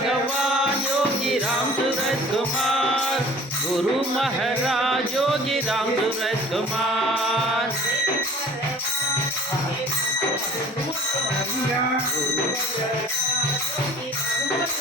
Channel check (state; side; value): normal; both; correlation 0.47